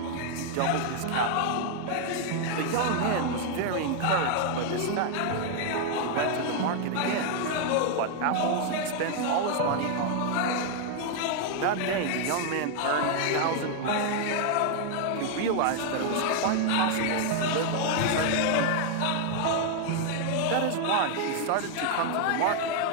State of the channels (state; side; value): different; both; correlation 0.00